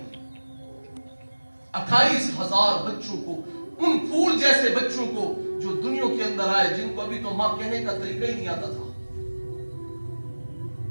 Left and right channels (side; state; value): both; inverted; correlation -1.00